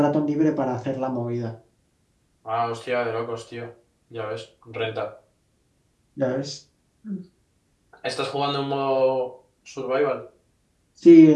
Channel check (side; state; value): both; identical; correlation 1.00